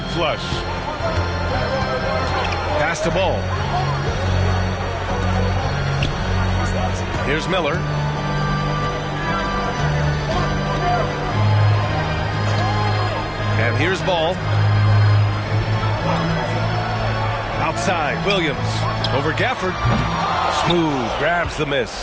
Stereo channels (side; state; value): both; identical; correlation 1.00